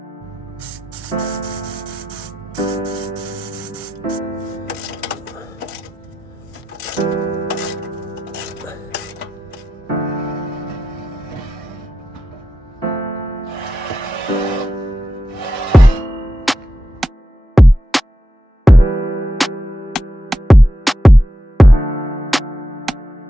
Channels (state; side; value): normal; both; correlation 0.88